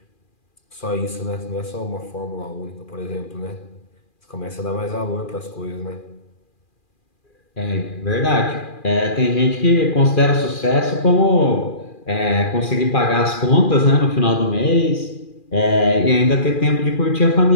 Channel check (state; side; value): late; right; 2.4 ms